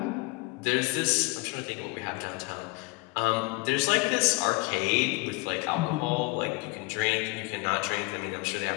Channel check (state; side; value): quieter; right; 25.8 dB